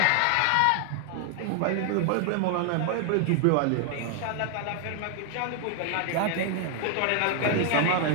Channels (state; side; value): different; both; correlation 0.00